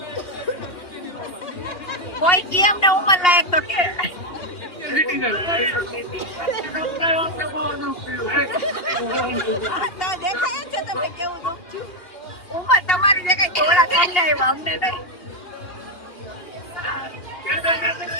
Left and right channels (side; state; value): right; late; 2.8 ms